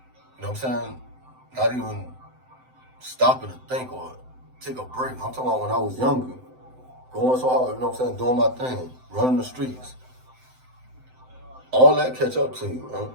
You know what I'm saying? Not even stopping to think or take a break. I'm talking about when I was younger. Going so hard, you know what I'm saying? Doing my thing, running the streets. All that catch up to you, man.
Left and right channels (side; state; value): left; late; 7.8 ms